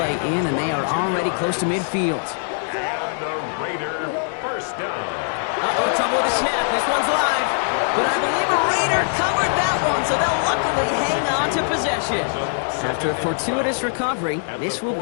in, and they are already close to midfield. And the Raider first down. Uh-oh, trouble with the snap. This one's live. But I believe a Raider covered that one, so they'll luckily hang on to possession. After a fortuitous recovery, this will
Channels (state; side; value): silent; right; 64 dB below the other